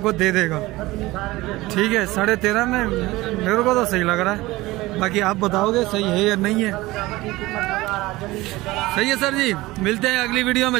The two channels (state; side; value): quieter; left; 19.3 dB